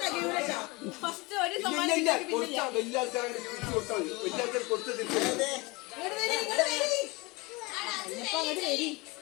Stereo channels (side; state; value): right; quieter; 24.7 dB